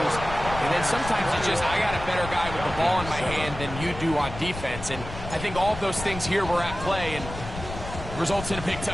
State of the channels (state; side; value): noise; left; rumble, 10 dB below the sound